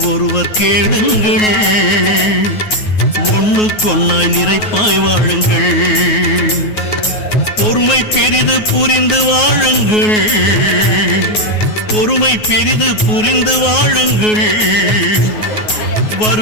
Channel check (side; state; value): right; late; 9.4 ms